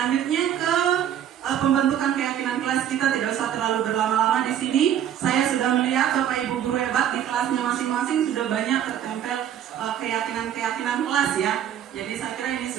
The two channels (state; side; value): quieter; left; 10.2 dB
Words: ke pembentukan keyakinan kelas, kita tidak usah terlalu berlama-lama di sini. Saya sudah melihat Bapak Ibu guru hebat di kelasnya masing-masing sudah banyak tertempel keyakinan-keyakinan kelas ya. Jadi saya kira ini